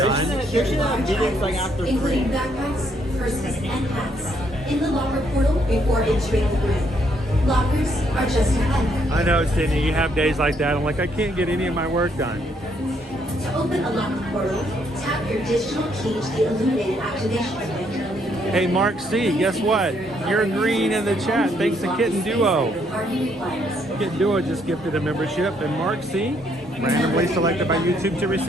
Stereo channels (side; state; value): both; normal; correlation 0.71